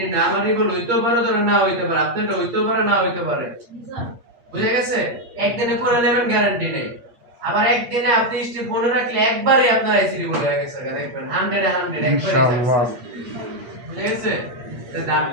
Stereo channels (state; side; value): late; left; 8.5 ms